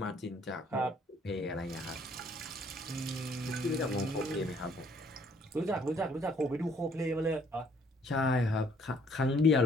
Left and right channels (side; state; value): both; normal; correlation 0.62